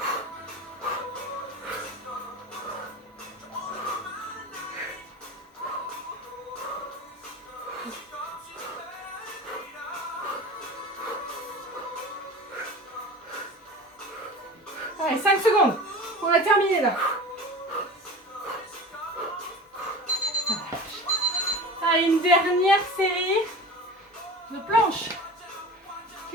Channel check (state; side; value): normal; both; correlation 0.34